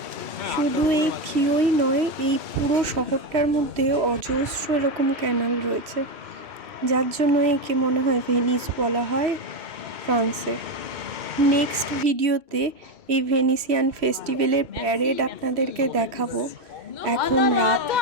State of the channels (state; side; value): late; left; 3.1 ms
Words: শুধু এই থিওই নয়, এই পুরো শহরটার মধ্যে অজস্র এরকম ক্যানাল রয়েছে, যার জন্য একে মনে হয় ভেনিস বলা হয় ফ্রান্সের। নেক্সট ভিডিওতে এই ভেনিসিয়ান ফেস্টিভ্যালের প্যারেড আপনাদেরকে দেখাবো। এখন রাত